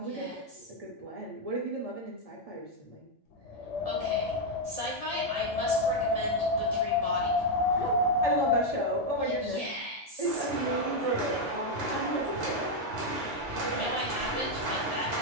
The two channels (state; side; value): normal; both; correlation 0.01